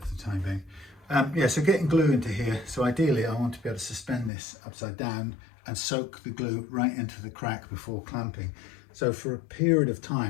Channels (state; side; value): drops out; right; at 4.3 s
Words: for the time being. Yeah, so getting glue into here. So ideally I want to be able to suspend this upside down and soak the glue right into the crack before clamping. So for a period of